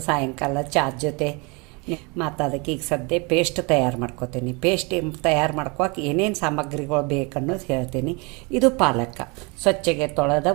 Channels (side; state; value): left; quieter; 29.7 dB